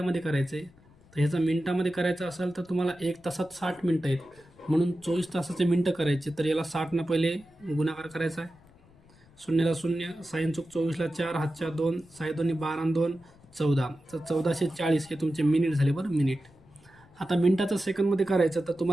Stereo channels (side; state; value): left; noise; rumble, 27 dB below the sound